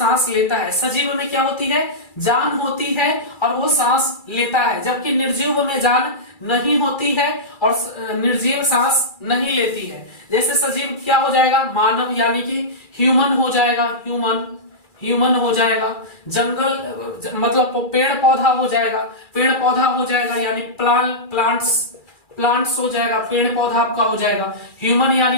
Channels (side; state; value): right; late; 2.3 ms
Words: लेता है, सजीव में क्या होती है, जान होती है और वो सांस लेता है, जबकि निर्जीव में जान नहीं होती है और निर्जीव सांस नहीं लेती है। जैसे सजीव क्या हो जाएगा, मानव यानी कि ह्यूमन हो जाएगा, ह्यूमन हो जाएगा, जंगल मतलब पेड़ पौधा हो जाएगा, पेड़ पौधा हो जाएगा यानी प्लांट्स हो जाएगा, पेड़ पौधा आपका हो जाएगा। ह्यूमन